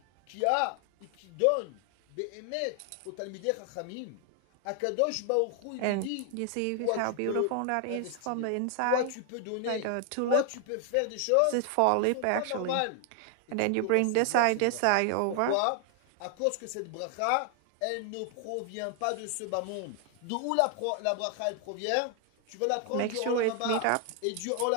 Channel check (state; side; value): different; both; correlation 0.00